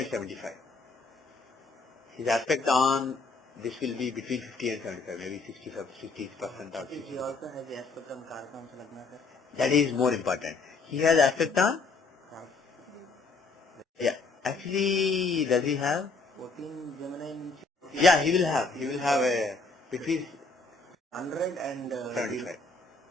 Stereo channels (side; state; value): right; quieter; 3.8 dB